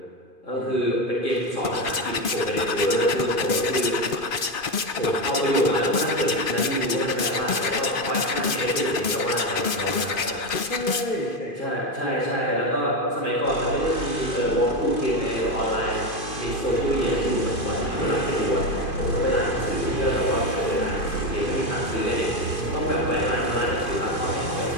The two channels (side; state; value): right; late; 2.5 ms